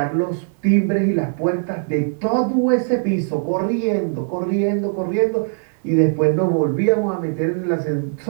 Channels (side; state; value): left; silent; digital silence